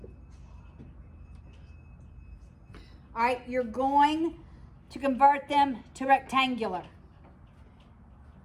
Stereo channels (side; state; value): both; identical; correlation 1.00